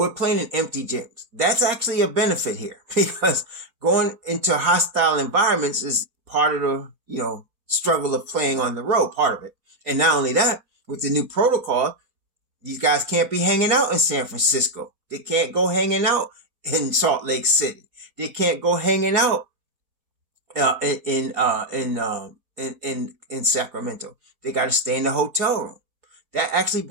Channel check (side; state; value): left; late; 4.3 ms